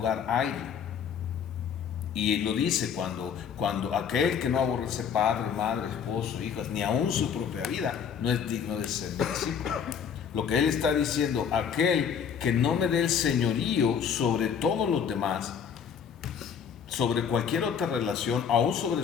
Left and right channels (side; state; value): right; quieter; 7.4 dB